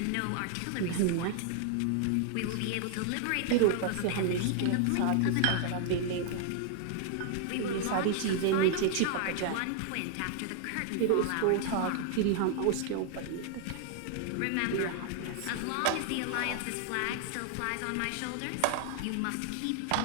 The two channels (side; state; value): both; different; correlation 0.00